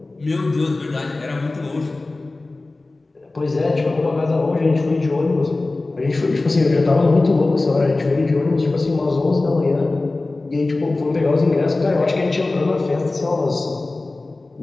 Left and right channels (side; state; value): right; quieter; 3.2 dB